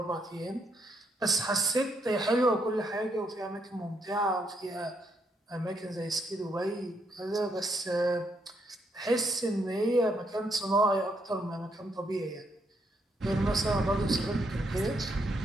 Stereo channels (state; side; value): normal; both; correlation 0.75